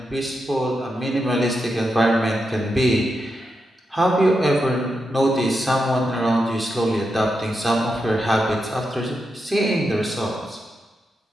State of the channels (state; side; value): normal; both; correlation 0.86